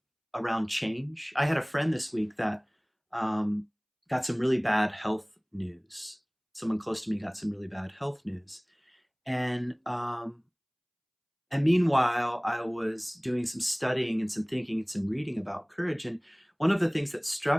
around change. I had a friend this week that um, got some really bad health news. Someone close to me got some really bad health news, and meanwhile, I was doing some studying and some thinking and some reading about courage. And one of the things that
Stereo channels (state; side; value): identical; both; correlation 1.00